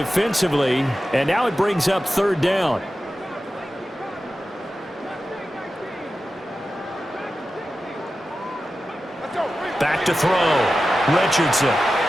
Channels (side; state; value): both; normal; correlation 0.93